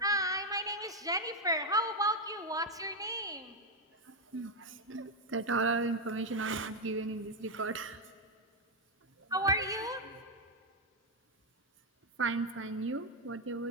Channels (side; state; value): both; normal; correlation 0.04